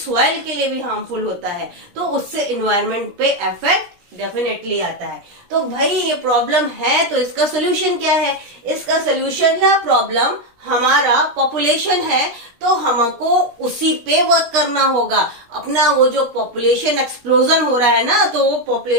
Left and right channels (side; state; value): left; late; 16 ms